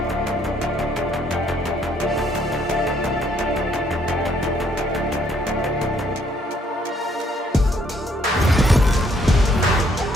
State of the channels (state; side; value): normal; both; correlation 0.67